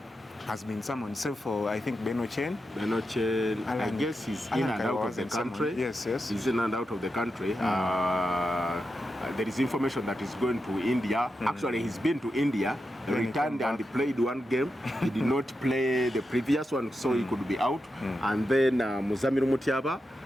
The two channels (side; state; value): both; normal; correlation 0.88